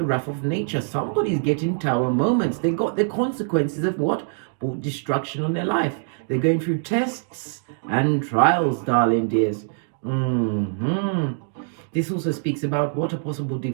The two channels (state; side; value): silent; left; digital silence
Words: wrath of nature. Somebody's getting tower moments. They got the consequences of what? Brought destruction on their life. They're going through tests and trials, darling dears. This also speaks about what? A possible